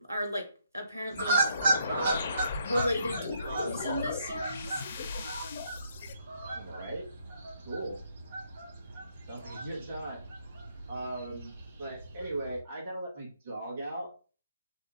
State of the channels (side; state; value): both; inverted; correlation -0.72